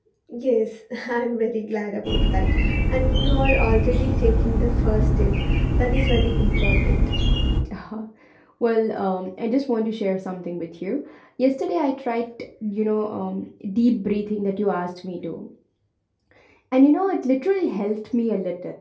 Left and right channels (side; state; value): both; identical; correlation 1.00